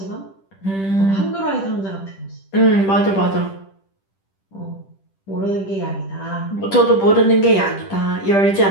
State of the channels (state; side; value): late; right; 10 ms